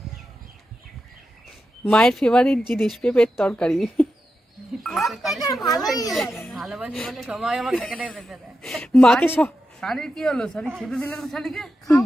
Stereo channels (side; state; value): both; normal; correlation 0.89